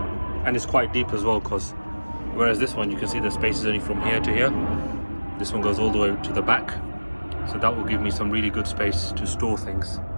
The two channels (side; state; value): both; inverted; correlation -1.00